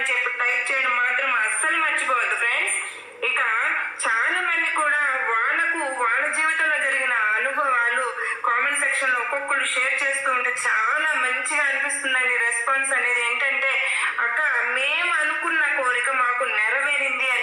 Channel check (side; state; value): both; identical; correlation 1.00